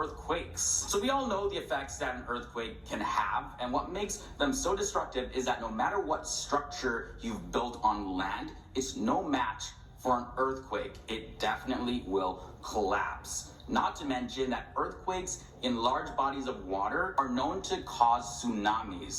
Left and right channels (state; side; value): identical; both; correlation 1.00